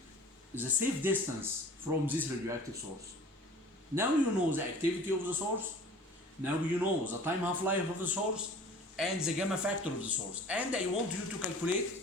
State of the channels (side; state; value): both; normal; correlation 0.45